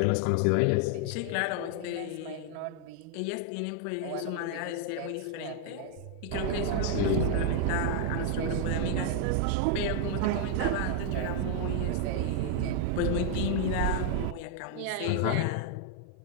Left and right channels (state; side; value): different; both; correlation 0.00